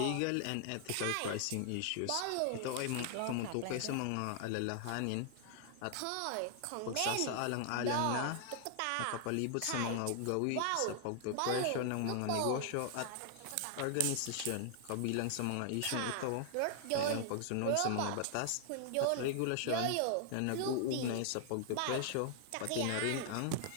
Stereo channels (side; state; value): both; different; correlation -0.01